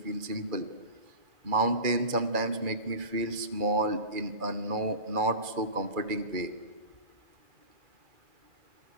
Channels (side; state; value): left; late; 2.3 ms